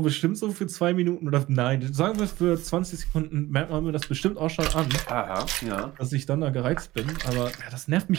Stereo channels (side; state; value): left; quieter; 17.7 dB